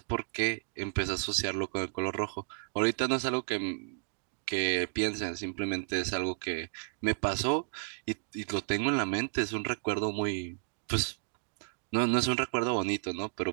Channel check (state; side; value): silent; left; digital silence